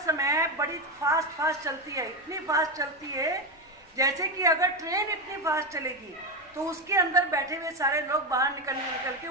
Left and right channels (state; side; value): noise; left; rumble, 30 dB below the sound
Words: बड़ी फास्ट चलती है। इतनी फास्ट चलती है जैसे कि अगर ट्रेन इतनी फास्ट चलेगी तो उसके अंदर बैठे हुए सारे लोग बाहर निकल के